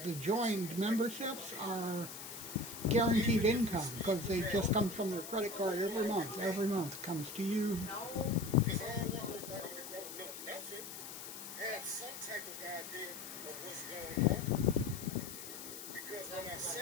the joined memberships are guaranteed income because they just come from their credit card every month. Every month comes to you. Because I don't want nobody that don't know nothing have some type of idea of what's going on. Because when I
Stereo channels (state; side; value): noise; left; hiss, 10 dB below the sound